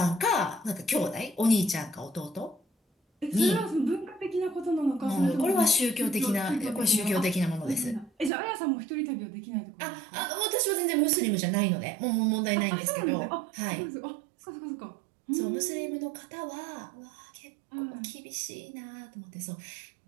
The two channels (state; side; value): drops out; left; at 8.3 s